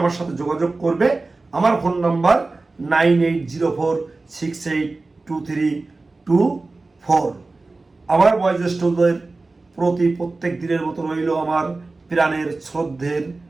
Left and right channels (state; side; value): quieter; left; 3.5 dB